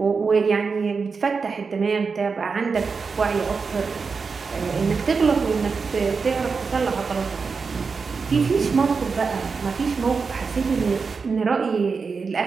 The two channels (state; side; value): quieter; left; 5.0 dB